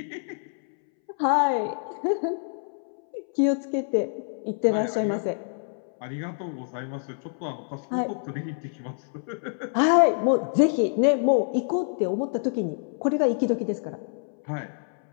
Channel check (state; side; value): silent; right; 61 dB below the other